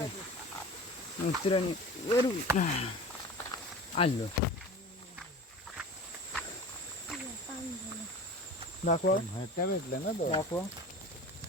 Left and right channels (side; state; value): both; normal; correlation 0.36